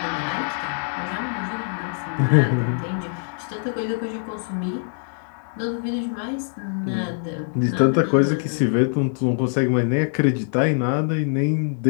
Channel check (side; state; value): right; silent; digital silence